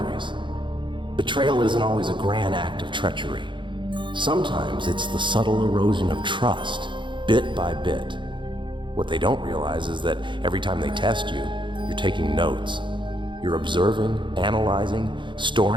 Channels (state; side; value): late; left; 0.23 ms